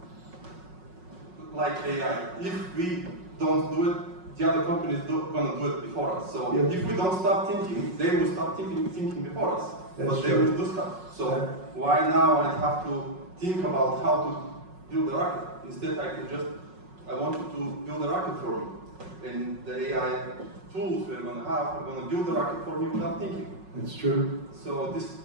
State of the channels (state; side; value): late; left; 5.4 ms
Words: like AI, if we don't do it, the other companies are going to do it before us. So Yeah. if we don't start thinking, they will start thinking before us. That's but they true. will do stuff. So Yeah. why now I have to think about how to build a rocket? Instead, I want you to build a rocket for me. And the AI tools we're going to have are going to build a rocket for me without thinking. It's true. So this